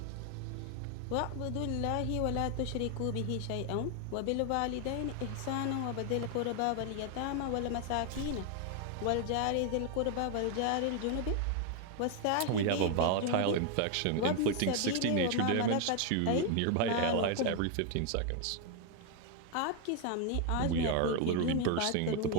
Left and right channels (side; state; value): both; different; correlation 0.01